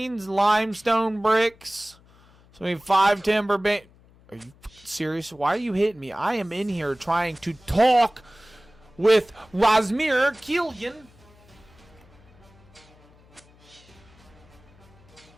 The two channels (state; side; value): noise; left; hum, 27 dB below the sound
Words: limestone bricks. So we need 5 timber beams. Are you serious? Why are you hitting me? I am in here trying to talk with Razmir Killian.